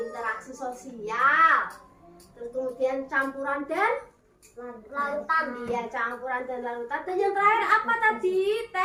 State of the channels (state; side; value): identical; both; correlation 1.00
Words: sosial. Terus kemudian campuran dan Lautan. iya, campuran dan larutan. Dan yang terakhir apa tadi?